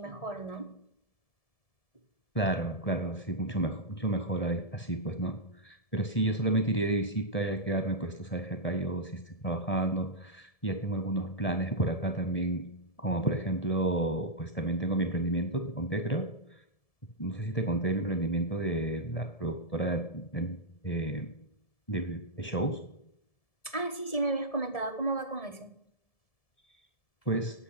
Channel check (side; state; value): right; late; 1.7 ms